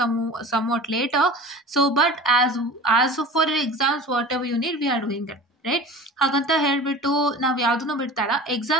somewhat later. So but as for your exams whatever you need, we are doing that, right. ಹಾಗಂತ ಹೇಳ್ಬಿಟ್ಟು ನಾವು ಯಾವುದನ್ನು ಬಿಡ್ತಾರ,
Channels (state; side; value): normal; both; correlation 0.38